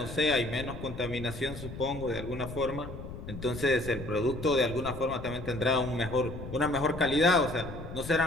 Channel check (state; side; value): noise; left; rumble, 10 dB below the sound